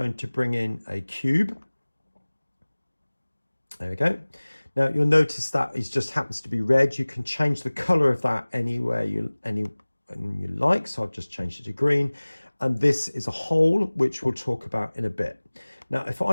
to bring in a cube. There we go. Now, you'll notice that it just happens to be red. You can change the color of that anywhere you like. So I've just changed it to green. And this is a hole, which we'll talk about in a bit. Now, if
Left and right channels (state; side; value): inverted; both; correlation -1.00